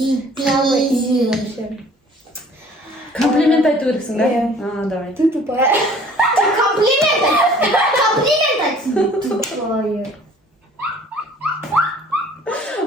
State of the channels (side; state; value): both; normal; correlation 0.52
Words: Самый пизи. вообще. Комплимент айту керексің, да? Иә. А, давай. Ты тупая. Комплимент. Тупое.